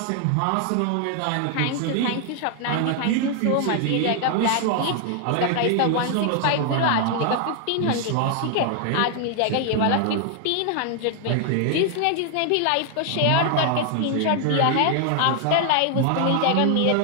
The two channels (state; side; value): different; both; correlation 0.00